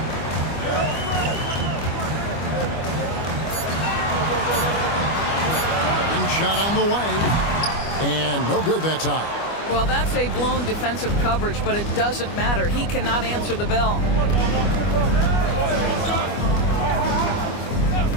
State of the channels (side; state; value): right; late; 25 ms